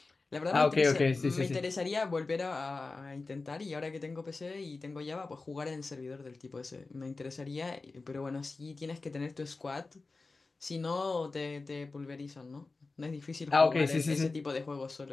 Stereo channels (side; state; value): right; quieter; 3.7 dB